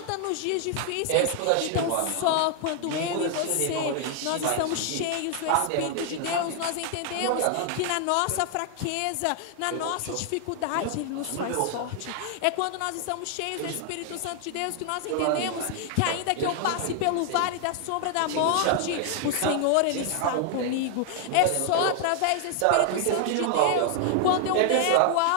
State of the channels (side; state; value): both; different; correlation 0.00